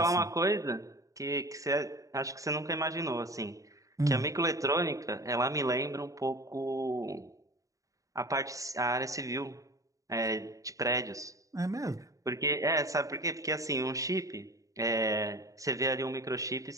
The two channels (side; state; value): left; late; 0.16 ms